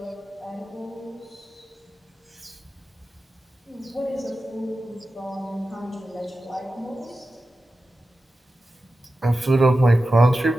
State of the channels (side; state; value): both; normal; correlation 0.93